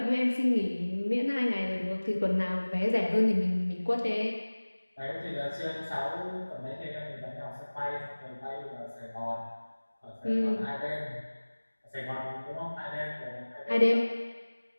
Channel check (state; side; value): inverted; both; correlation -1.00